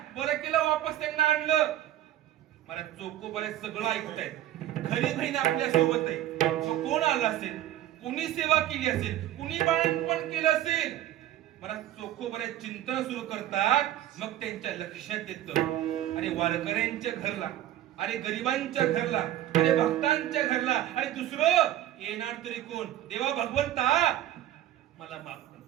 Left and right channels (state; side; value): quieter; left; 13.0 dB